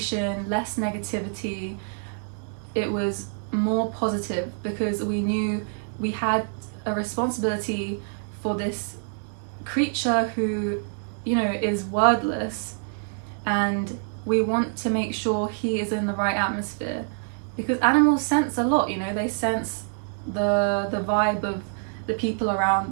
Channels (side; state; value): left; silent; digital silence